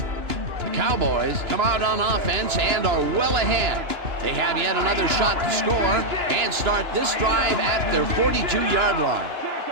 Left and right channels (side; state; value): left; late; 2.9 ms